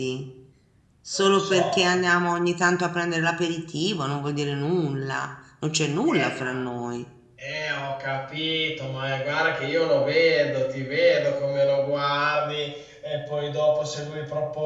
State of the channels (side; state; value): both; identical; correlation 1.00